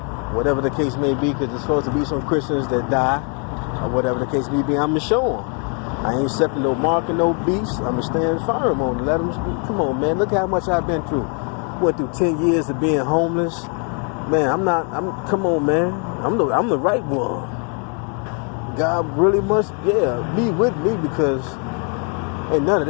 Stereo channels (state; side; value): quieter; right; 39.0 dB